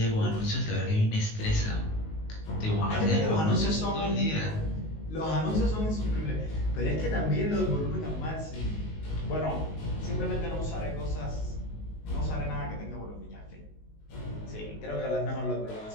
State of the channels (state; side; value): late; right; 19 ms